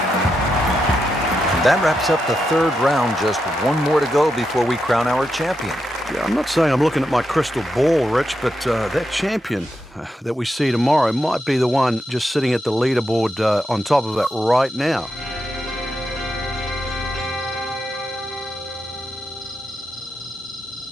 that wraps up the third round. Just one more to go before we crown our champion. Yeah, I'm not saying I'm looking at my crystal ball, Rich, but that champion that we see tomorrow might be the one just sitting at the leaderboard on top of it right now.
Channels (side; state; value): both; normal; correlation 0.85